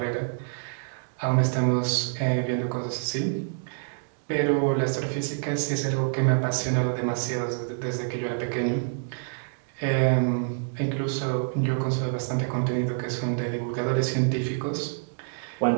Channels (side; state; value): left; silent; digital silence